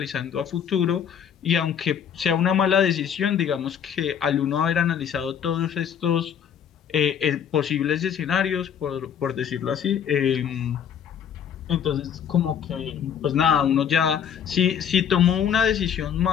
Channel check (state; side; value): quieter; right; 8.4 dB